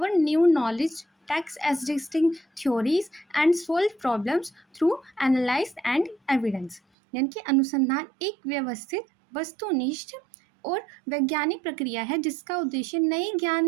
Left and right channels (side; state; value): left; drops out; at 6.8 s